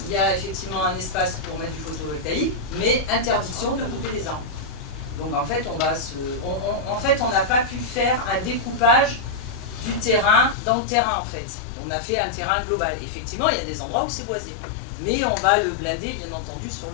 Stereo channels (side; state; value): right; drops out; at 10.6 s